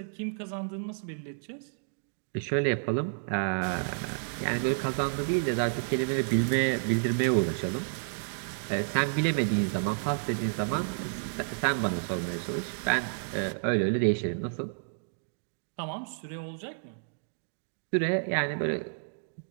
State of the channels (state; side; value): silent; left; digital silence